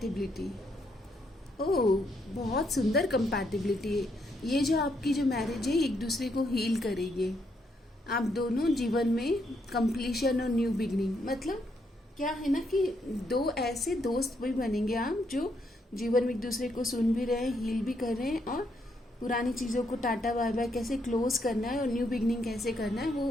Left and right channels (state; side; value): normal; both; correlation 0.76